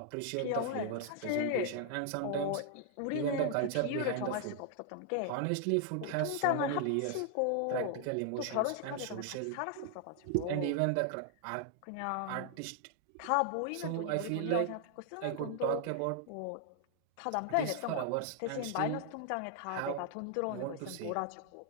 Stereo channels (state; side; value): different; both; correlation 0.00